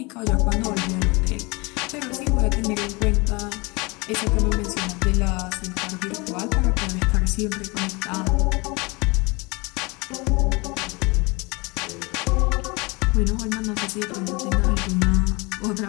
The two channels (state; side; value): quieter; right; 26.9 dB